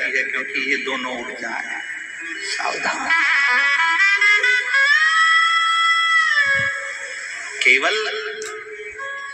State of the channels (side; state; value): both; identical; correlation 1.00